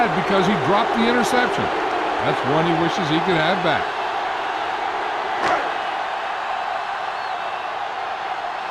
because he dropped the interception. That's one he wishes he could have back.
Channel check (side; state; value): both; identical; correlation 1.00